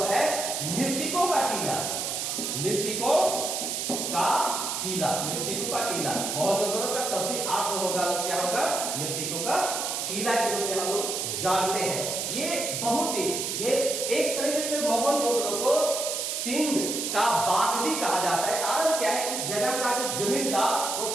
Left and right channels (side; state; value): right; noise; hiss, 2 dB below the sound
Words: है मृतकों का टीला। मोहनजोदड़ो का शाब्दिक अर्थ होगा, क्या होगा? मृतकों का टीला के रूप में हम लोग जानते हैं। ये एक तरीके से मोहनजोदड़ो को सिंध का बाग भी कहा जाता है। कारण क्या है? इस जगह का जो जमीन था वो